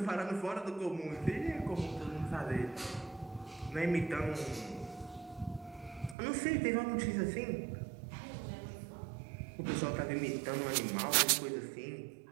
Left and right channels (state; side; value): drops out; left; at 6.2 s